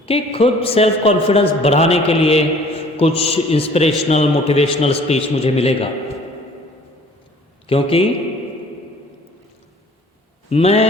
कि खुद सेल्फ कॉन्फिडेंस बढ़ाने के लिए कुछ इंस्पिरेशनल मोटिवेशनल स्पीच मुझे मिलेगा। क्योंकि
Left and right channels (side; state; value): both; normal; correlation 0.52